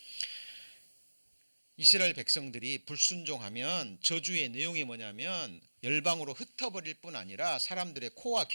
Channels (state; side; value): inverted; both; correlation -1.00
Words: 이스라엘 백성들이 불순종하면 저주의 내용이 뭐냐면 열방으로 흩어버릴 뿐 아니라 사람들의 코와